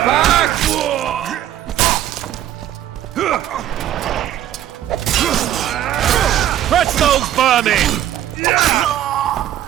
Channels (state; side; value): quieter; left; 11.9 dB